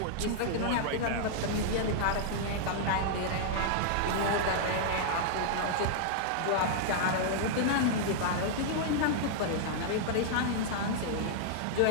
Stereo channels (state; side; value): different; both; correlation -0.01